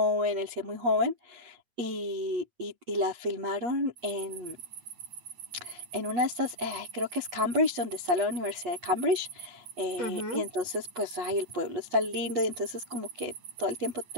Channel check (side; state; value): left; late; 8.3 ms